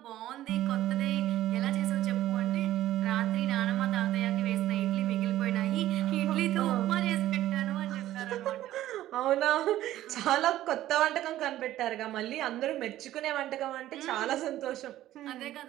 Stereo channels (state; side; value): quieter; left; 13.9 dB